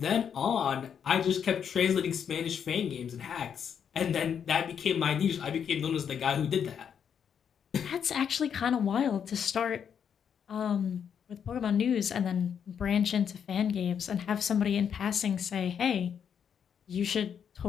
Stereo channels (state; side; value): quieter; right; 7.8 dB